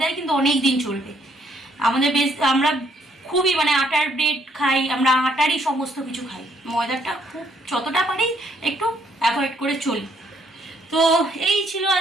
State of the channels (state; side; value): normal; both; correlation 0.69